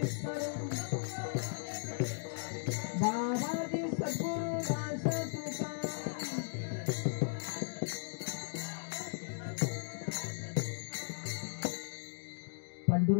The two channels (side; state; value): right; silent; digital silence